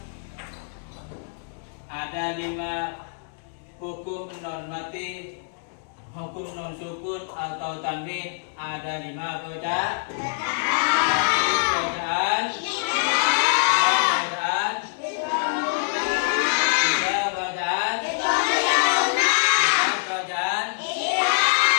ada 5 hukum normatif, hukum non sukun atau tanwin, ada 5 bacaan. Bacaan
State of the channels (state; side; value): silent; right; digital silence